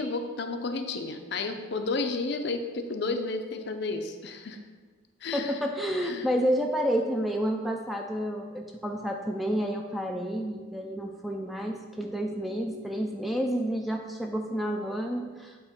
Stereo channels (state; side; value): normal; both; correlation 0.64